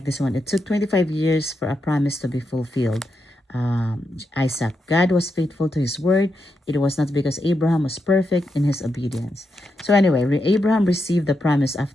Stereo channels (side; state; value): both; normal; correlation 0.84